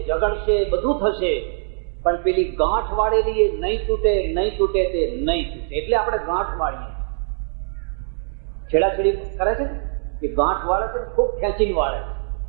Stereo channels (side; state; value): left; silent; digital silence